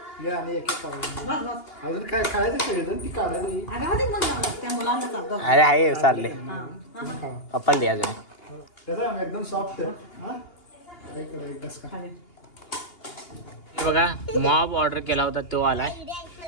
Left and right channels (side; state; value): right; late; 2.8 ms